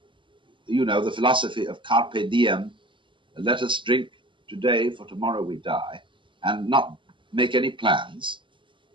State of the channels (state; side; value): late; left; 0.24 ms